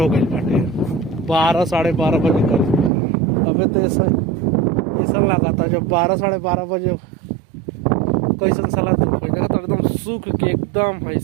गई बाटे 12 साढ़े 12 बजे कर। अबे तो ऐसा ऐसा लगा था जब 12 साढ़े 12 बजे कैसन साला धूप है देखा तो एकदम सूख के एकदम है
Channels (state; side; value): drops out; left; at 2.9 s